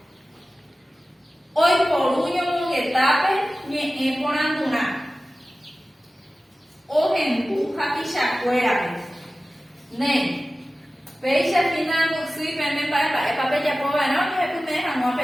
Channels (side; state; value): both; normal; correlation 0.96